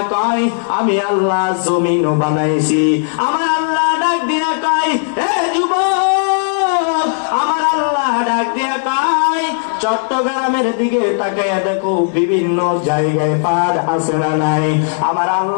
কয় আমি আল্লাহ জমিনও বানাইছি। আমার আল্লাহ ডাক দিয়া কয়, হে যুবক, আমার আল্লাহ ডাক দিয়া কয় চট্টগ্রামের দিকে তাকাইয়া দেখো বিভিন্ন জায়গায় পাহাড় আছে না নাই? আমার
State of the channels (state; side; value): silent; right; digital silence